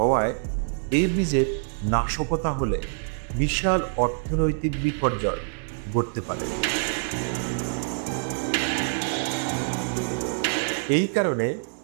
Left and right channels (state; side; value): silent; left; 61 dB below the other